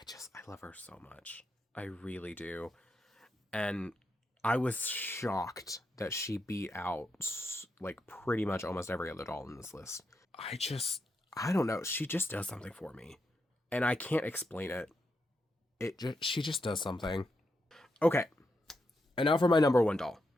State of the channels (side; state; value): both; normal; correlation 0.84